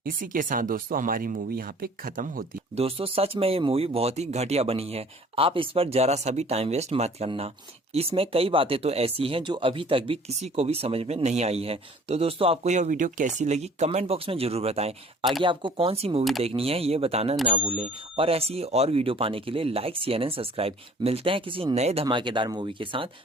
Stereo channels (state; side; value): normal; both; correlation 0.51